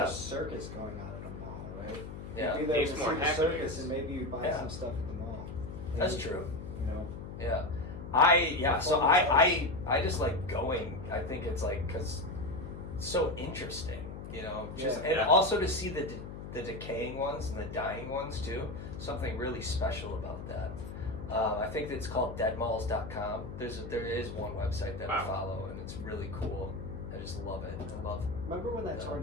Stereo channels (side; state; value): left; noise; hum, 10 dB below the sound